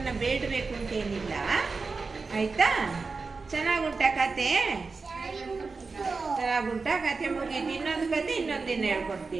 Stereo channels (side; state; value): left; quieter; 4.3 dB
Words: ಬೇಡಬೇಕು ಅಂತೇನಿಲ್ಲ. ಆಯ್ತಾ? ಚೆನ್ನಾಗುಂಟ ಕತೆ? ಚೆನ್ನಾಗುಂಟ ಕತೆ. ಮುಗೀತು. ಇನ್ನೊಂದು ಕತೆ ಇನ್ನೊಂದಿನ